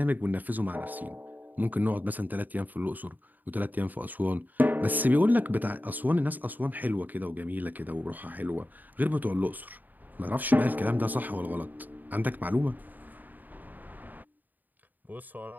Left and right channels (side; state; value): left; late; 0.085 ms